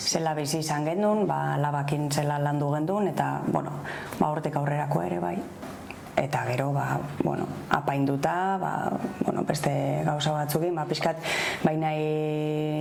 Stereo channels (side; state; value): both; identical; correlation 1.00